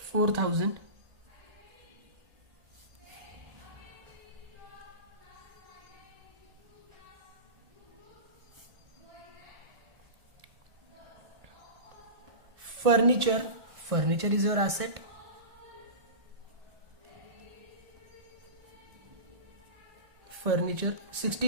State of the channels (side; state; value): left; late; 1.6 ms